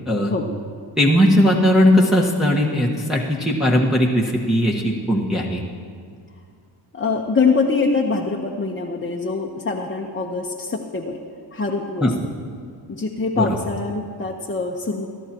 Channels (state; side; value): normal; both; correlation 0.62